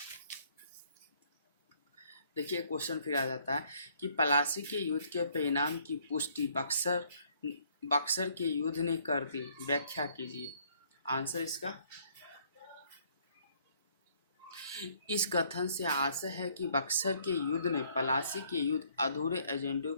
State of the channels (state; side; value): inverted; both; correlation -0.64